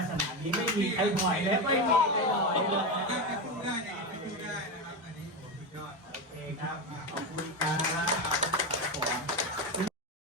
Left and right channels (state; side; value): normal; both; correlation 0.15